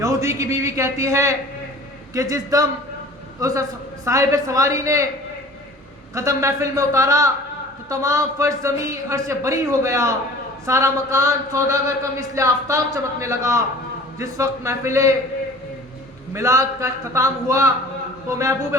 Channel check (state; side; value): normal; both; correlation 0.45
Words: یہودی کی بیوی کہتی ہے کہ جس دم اس صاحب سواری نے قدم محفل میں اتارا تو تمام فرش زمین عرش بری ہو گیا، سارا مکان سوداگر کا مثل آفتاب چمکنے لگا۔ جس وقت محفل میلاد کا اختتام ہوا تو محبوب